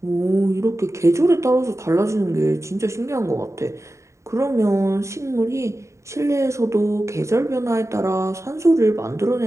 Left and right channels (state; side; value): late; left; 0.14 ms